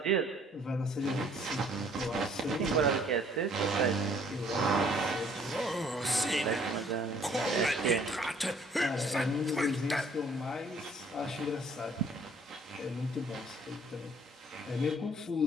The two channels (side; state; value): both; normal; correlation 0.59